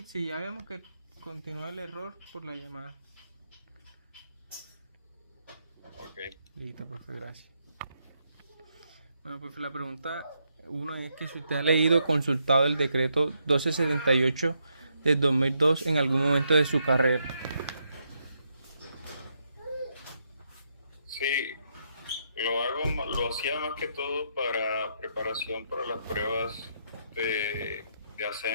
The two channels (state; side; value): inverted; both; correlation -0.78